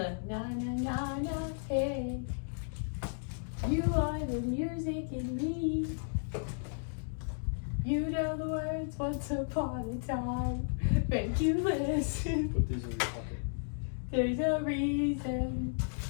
na na na na hey. You are the music in me. You know the words once upon a time. Make you listen. Put these in your pocket. There's a reason.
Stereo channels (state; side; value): silent; right; digital silence